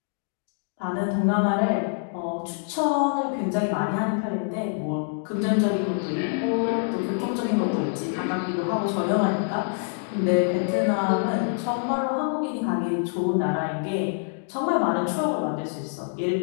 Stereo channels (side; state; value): right; silent; 59 dB below the other